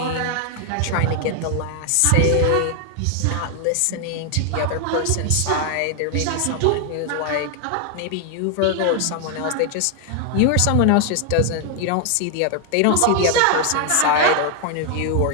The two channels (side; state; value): both; different; correlation 0.00